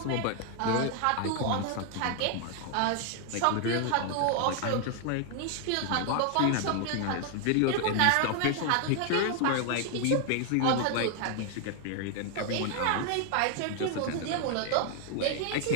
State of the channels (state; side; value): different; both; correlation 0.00